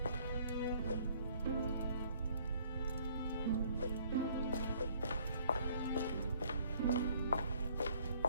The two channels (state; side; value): inverted; both; correlation -0.59